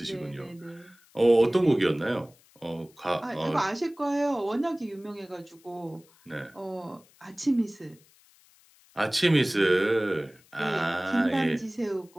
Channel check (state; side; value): noise; left; hiss, 30 dB below the sound